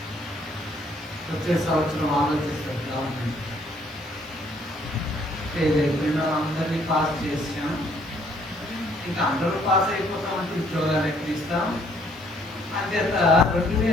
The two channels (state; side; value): noise; left; hiss, 30 dB below the sound